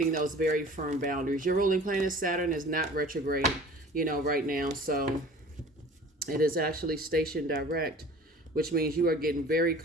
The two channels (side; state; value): both; normal; correlation 0.45